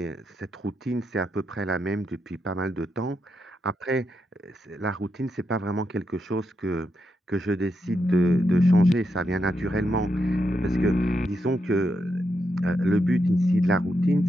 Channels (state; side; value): normal; both; correlation 0.83